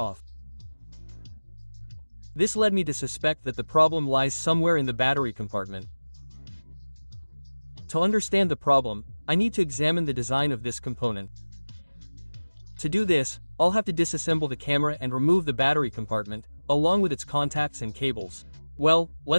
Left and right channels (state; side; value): inverted; both; correlation -1.00